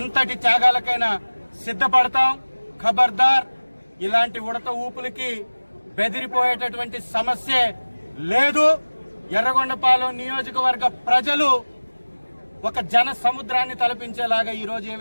త్యాగాలకైనా సిద్ధపడతాం. ఖబర్దార్, ఇలాంటి ఉడత ఊపులకి బెదిరిపోయేటటువంటి సమస్యే లేదు. ఎర్రగొండపాలెం నియోజకవర్గ ప్రజలు ఒక జన సముద్రాన్ని తలపించేలాగా ఈ రోజు ఏ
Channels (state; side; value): inverted; both; correlation -1.00